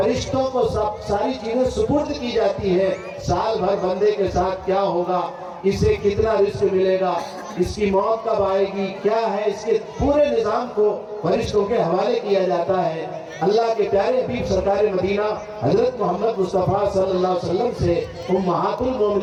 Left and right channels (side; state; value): both; identical; correlation 1.00